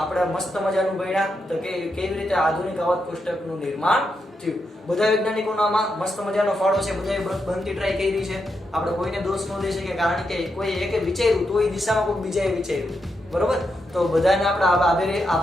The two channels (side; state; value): both; normal; correlation 0.84